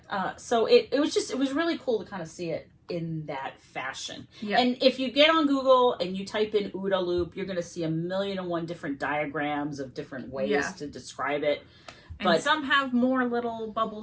So it was really cool to kind of see it in that fashion. Yeah. And if you get on Google and you type in OODA Loop, you're going to see 1,000,001 different diagrams of different ways to describe it. And some have more little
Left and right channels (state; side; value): identical; both; correlation 1.00